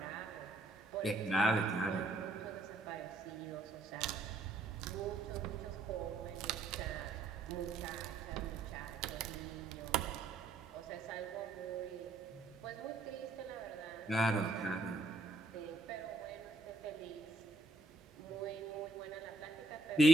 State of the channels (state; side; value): quieter; left; 3.0 dB